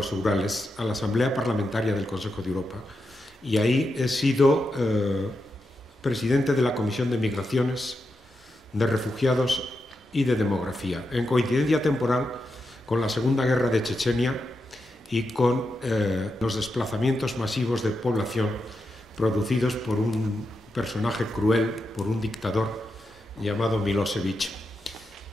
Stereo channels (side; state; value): both; normal; correlation 0.86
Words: Urales, a la Asamblea Parlamentaria del Consejo de Europa. Y ahí he sido presidente de la Comisión de Migraciones, de Refugiados y de Demografía, en coincidencia temporal con la Segunda Guerra de Chechenia y con los desplazamientos masivos de población producidos por un personaje cruel, por un dictador llamado Milosevic.